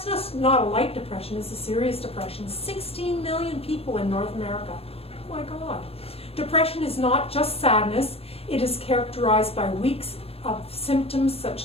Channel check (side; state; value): right; late; 0.28 ms